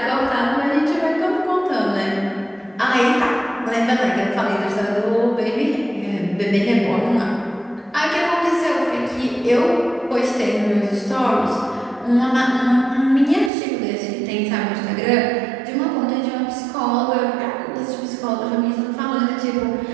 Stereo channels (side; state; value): left; drops out; at 13.5 s